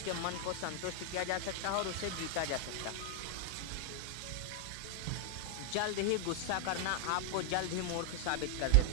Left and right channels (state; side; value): different; both; correlation 0.00